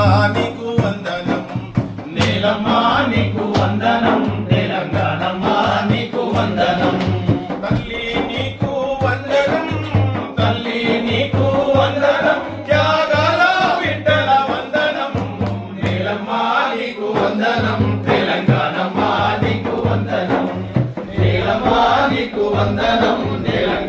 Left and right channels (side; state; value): both; identical; correlation 1.00